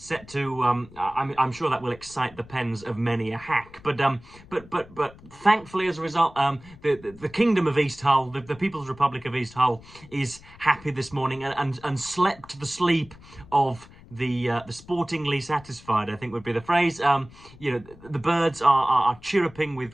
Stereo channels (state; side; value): noise; left; rumble, 22 dB below the sound